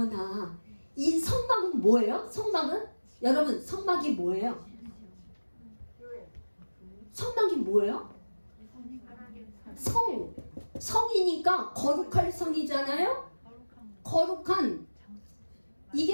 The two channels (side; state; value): both; inverted; correlation -1.00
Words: 이 성막은 뭐예요? 여러분, 성막이 뭐예요? 성막이 뭐예요? 성이니까 거룩할 성이잖아요. 거룩한,